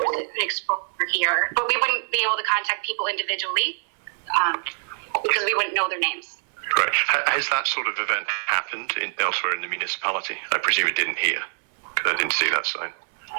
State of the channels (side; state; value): left; silent; 62 dB below the other